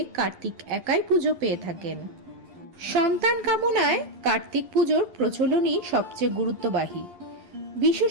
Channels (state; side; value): late; left; 11 ms